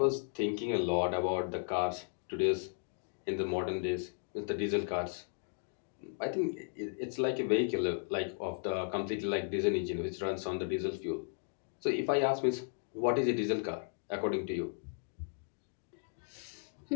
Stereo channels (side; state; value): right; silent; digital silence